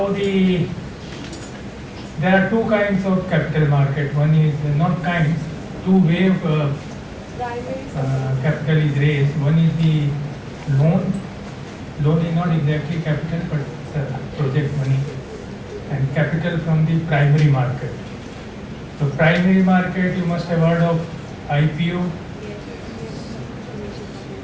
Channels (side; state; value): both; identical; correlation 1.00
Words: there are two kinds of capital market. One is not kinds, two way of capital is raised. One is the loan. Loan is not exactly capital, but it's project money, and capital from the primary market. So primary market, you must have heard of IPO,